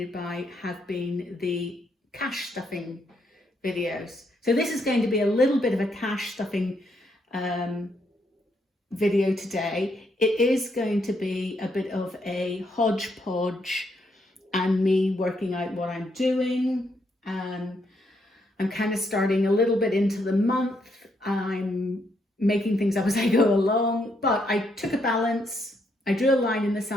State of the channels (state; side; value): normal; both; correlation 0.76